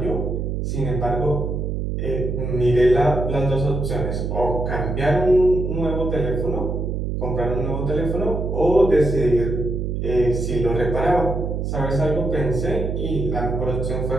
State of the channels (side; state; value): right; noise; hum, 2 dB below the sound